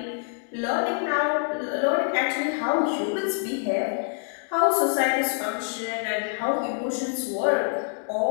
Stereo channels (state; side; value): silent; right; 61 dB below the other